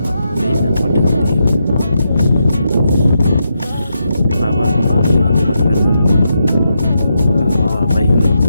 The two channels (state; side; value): inverted; both; correlation -0.83